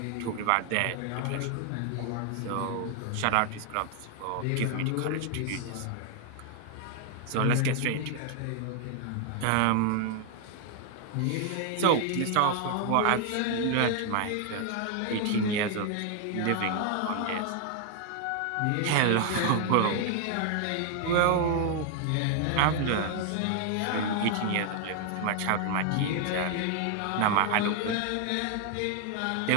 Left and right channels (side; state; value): both; different; correlation 0.00